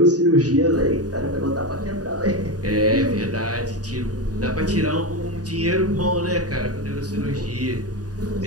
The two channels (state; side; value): late; left; 0.68 ms